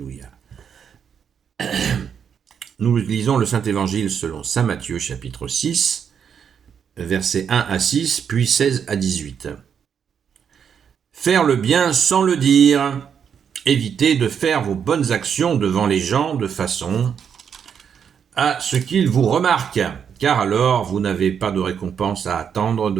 Nous lisons le Saint-Évangile selon saint Matthieu, chapitre 6, versets 1 à 6, puis 16 à 18. Faire le bien sans le dire. Évitez de faire vos bonnes actions devant les gens de façon à ce qu'ils vous remarquent, car alors vous n'avez pas de récompense à attendre de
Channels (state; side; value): quieter; left; 7.6 dB